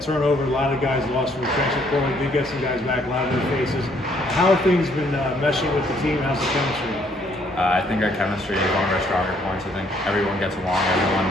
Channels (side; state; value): both; normal; correlation 0.66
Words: turnover. A lot of guys lost from the transfer portal. We did get some guys back, a lot of their faces. How have things been meshing with the team? How's the chemistry? I think our chemistry is one of our stronger points. I think everyone gets along. Everyone